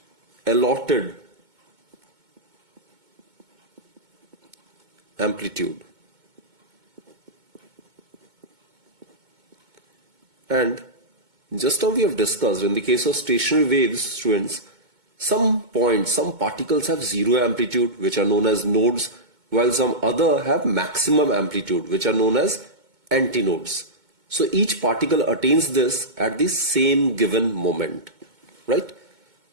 allotted amplitude. And just how we have discussed, in the case of stationary waves, students, some points, some particles have zero amplitude, which are known as nodes, while some other have maximum amplitude, which are known as antinodes. So each particle attains this at the same given moment, right?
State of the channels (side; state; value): left; late; 2.2 ms